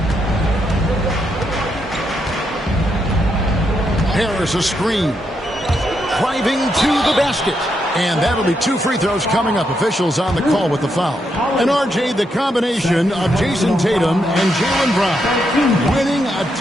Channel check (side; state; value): both; normal; correlation 0.80